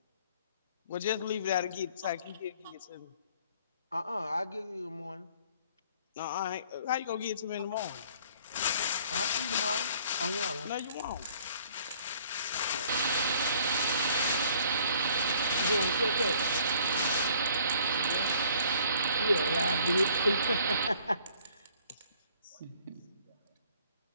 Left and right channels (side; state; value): both; inverted; correlation -0.57